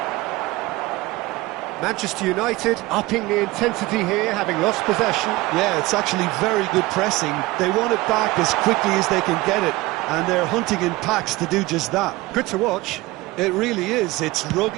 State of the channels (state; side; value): quieter; left; 20.2 dB